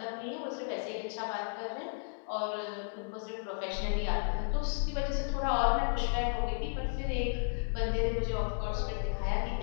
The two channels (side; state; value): right; silent; digital silence